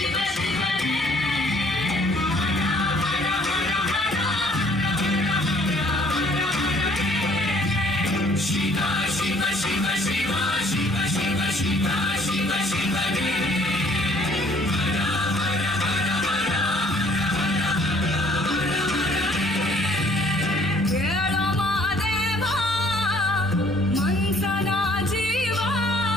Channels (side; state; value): both; normal; correlation 0.59